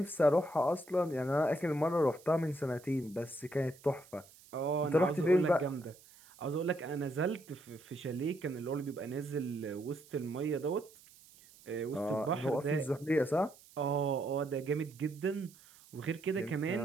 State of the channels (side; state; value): right; noise; hiss, 24 dB below the sound